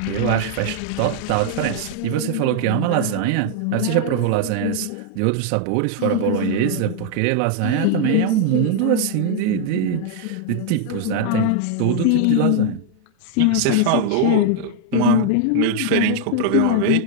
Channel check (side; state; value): both; different; correlation 0.00